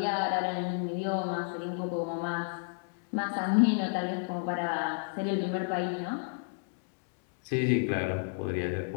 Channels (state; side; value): silent; right; digital silence